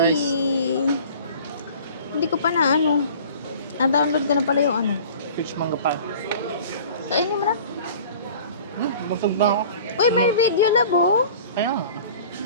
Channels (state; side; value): inverted; both; correlation -0.45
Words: Hindi ko pa na ano. Na-download ko na pala yung ano. Peach mango pie. Kainin mo na. Busog na ako. Uy, may video labo. Kaya nga.